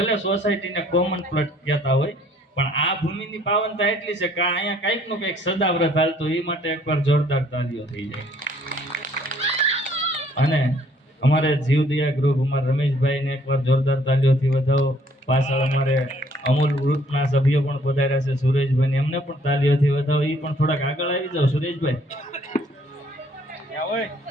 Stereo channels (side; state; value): both; normal; correlation 0.62